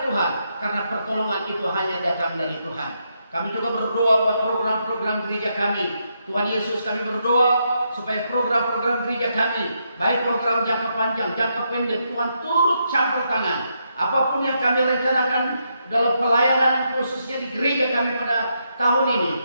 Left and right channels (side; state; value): both; inverted; correlation -0.80